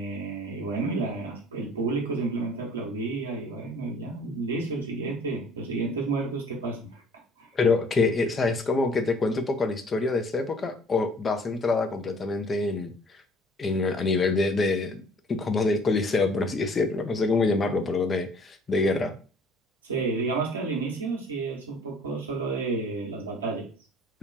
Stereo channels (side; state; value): both; normal; correlation 0.53